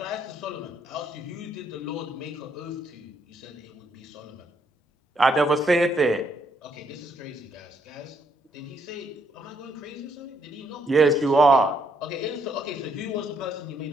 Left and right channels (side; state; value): both; normal; correlation 0.73